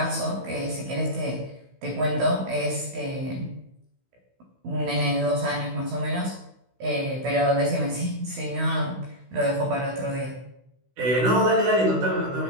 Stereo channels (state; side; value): late; left; 16 ms